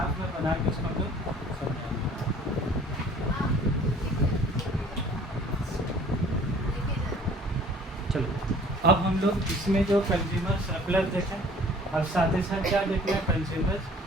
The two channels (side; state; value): both; normal; correlation 0.52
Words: में बना के उसको हम लोग समझाएंगे। चलो अब हम लोग इसमें जो कंज्यूमर सरप्लस देखें, और साथ ही साथ क्या देखना है?